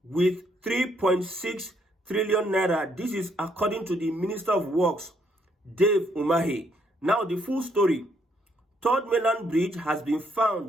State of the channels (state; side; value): normal; both; correlation 0.71